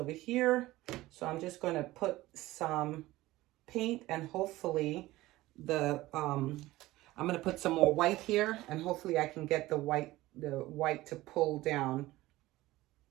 here. So I'm just going to put some paint and hopefully I'm going to put some more white here, and hopefully I can get the white to pull down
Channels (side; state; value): left; quieter; 17.7 dB